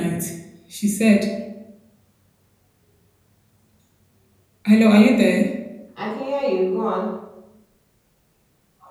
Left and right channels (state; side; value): identical; both; correlation 1.00